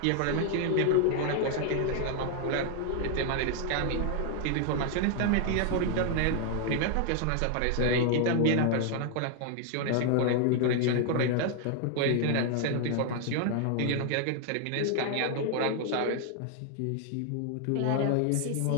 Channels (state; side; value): different; both; correlation 0.00